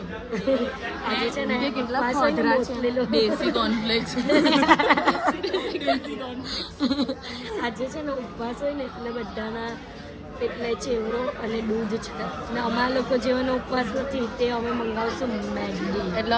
આજે છે ને કેટલા દેશી કોર્નફ્લેક્સ આજે છે ને ઉપવાસ હોય ને એટલે બધાના એટલે ચેવડો અને દૂધ છે ને અમારા લોકો જેવાનો ઉપવાસ નથી તે અમે મંગાવશું મેગી એટલે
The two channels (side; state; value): both; identical; correlation 1.00